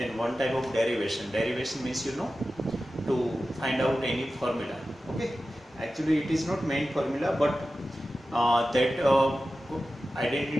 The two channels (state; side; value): normal; both; correlation 0.94